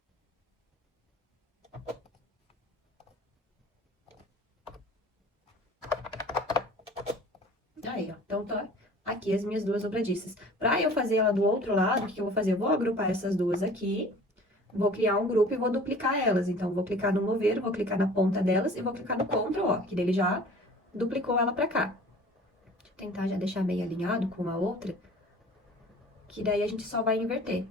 Aí, ó. Então, tá aqui as minhas duas dobradiças. Pra eu fazer ela do outro lado, o que eu vou fazer? Eu vou agrupar essas duas aqui, vou criar um grupo e vou duplicar elas. Então, vou clicar no mover, vou clicar na ponta delas e vou clicar no Ctrl, ó, que ele já duplicou ela pra cá. Deixa eu tentar já deixar meio alinhado com a outra, que daí a gente só vai inverter.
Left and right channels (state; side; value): normal; both; correlation 0.46